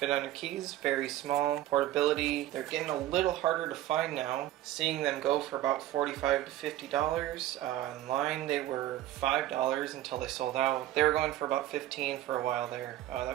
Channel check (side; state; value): left; quieter; 13.9 dB